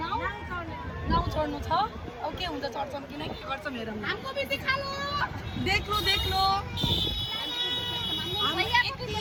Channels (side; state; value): both; identical; correlation 1.00